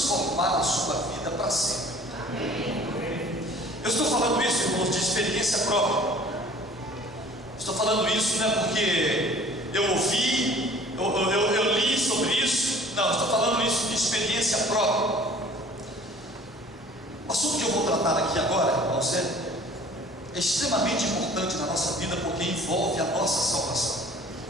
a sua vida para sempre. Eu estou falando isso, irmãos, de experiência própria. Estou falando isso não é porque eu ouvi, eu li sobre isso. Não, estou falando isso de experiência própria. O assunto que eu vou tratar aqui agora, irmãos, é extremamente importante na nossa vida porque envolve a nossa salvação.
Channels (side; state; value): both; normal; correlation 0.50